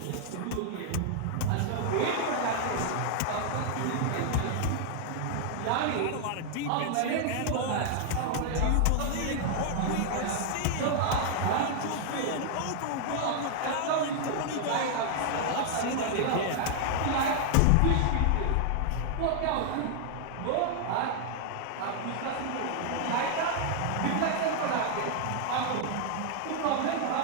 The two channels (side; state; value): both; different; correlation 0.00